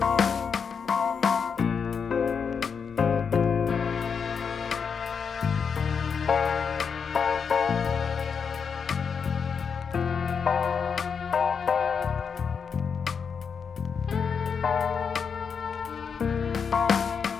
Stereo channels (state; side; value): quieter; right; 6.3 dB